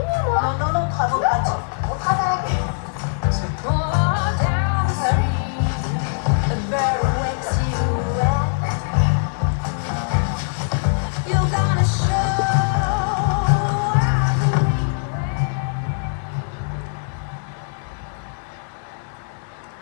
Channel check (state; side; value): silent; right; digital silence